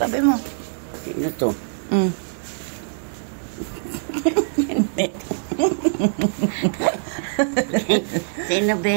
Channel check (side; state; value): left; silent; digital silence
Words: mo. Sino to? Sino